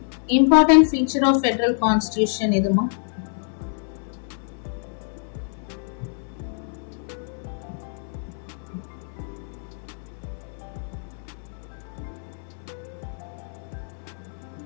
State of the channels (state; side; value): silent; right; 61 dB below the other